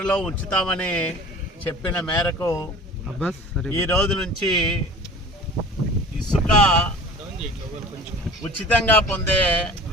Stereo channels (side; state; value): both; normal; correlation 0.42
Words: ఉంచుతామని చెప్పిన మేరకు ఈ రోజు నుంచి ఇసుక ఉచితంగా పొందే